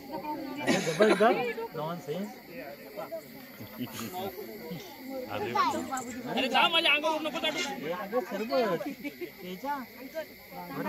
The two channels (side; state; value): both; identical; correlation 1.00